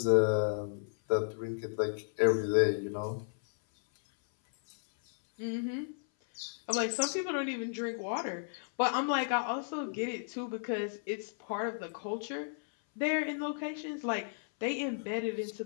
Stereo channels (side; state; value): right; silent; 55 dB below the other